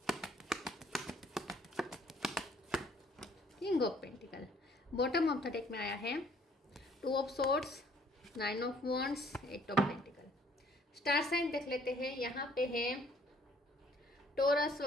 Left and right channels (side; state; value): both; normal; correlation 0.61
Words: king of pentacle. Bottom of the deck में आया है two of swords, nine of wands, eight of pentacle. Star sign देख लेते हैं। यहाँ पे है Taurus,